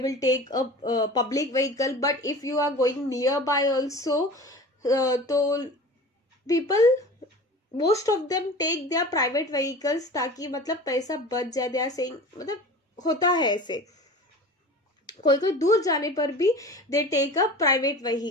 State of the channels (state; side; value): normal; both; correlation 0.37